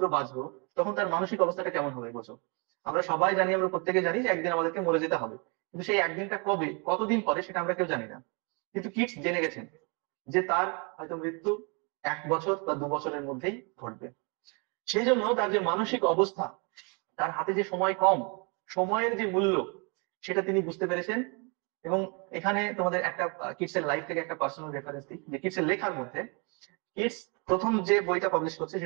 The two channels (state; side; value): quieter; left; 33.5 dB